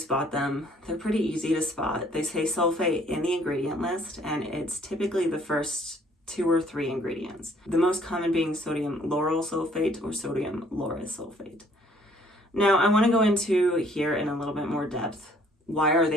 them? They're pretty easy to spot. They say sulfate in the ingredient list, and it's typically the first 2 or 3 ingredients. The most common being sodium lauryl sulfate or sodium lauryl sulfate. Now, I want to go into here in a little bit more depth. Why are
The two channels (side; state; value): both; normal; correlation 0.60